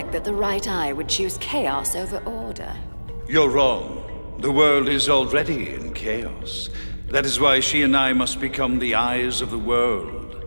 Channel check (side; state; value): both; inverted; correlation -1.00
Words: that the right eye would choose chaos over order. You're wrong. The world is already in chaos. That is why she and I must become the eyes of the world.